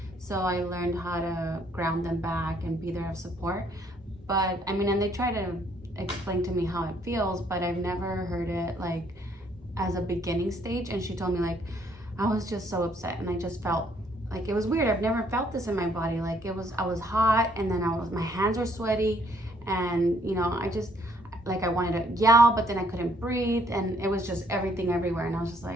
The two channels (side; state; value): both; normal; correlation 0.67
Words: So I learned how to ground them back and be there of support. But I mean, and they try to explain to me how it feels, but I've never heard it like as a beginning stage. And she told me, like, I was just so upset, and I just felt like it was weird. I've never felt this in my body. Like I was hot, and then my hands were sweaty, and I just, like, I wanted to yell, but then I couldn't breathe, and it was just everything everywhere. And I was just